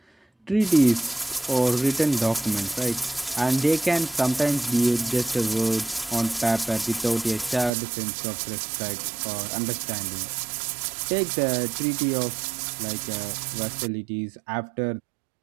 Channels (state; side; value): drops out; left; at 7.7 s